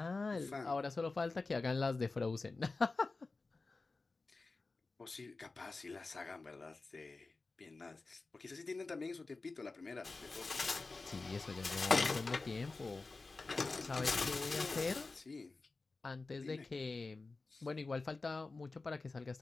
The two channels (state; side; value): quieter; right; 3.7 dB